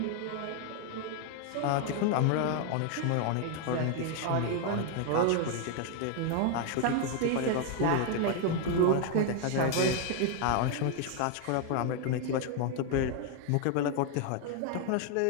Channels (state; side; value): different; both; correlation 0.00